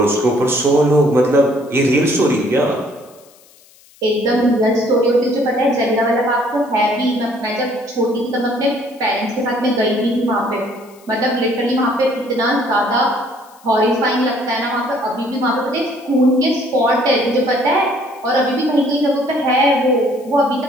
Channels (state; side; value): noise; left; hiss, 28 dB below the sound